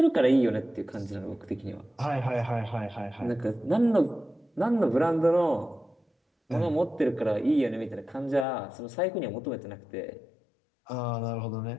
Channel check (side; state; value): right; drops out; at 8.5 s